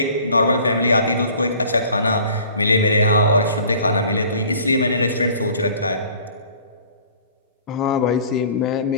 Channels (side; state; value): both; inverted; correlation -0.50